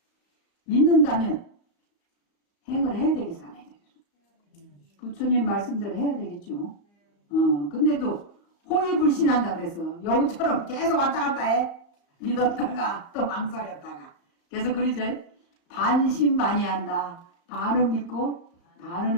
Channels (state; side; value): late; right; 35 ms